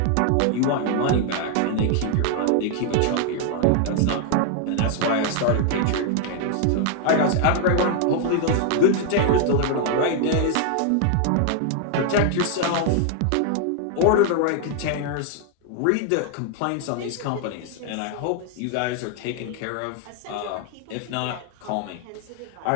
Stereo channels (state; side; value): different; both; correlation 0.00